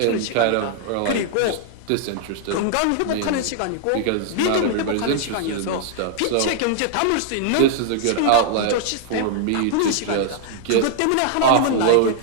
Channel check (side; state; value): both; different; correlation 0.00